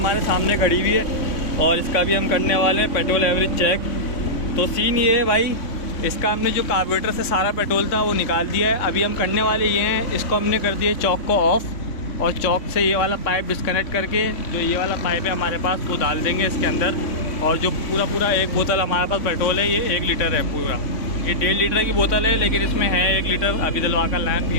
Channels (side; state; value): right; late; 3.5 ms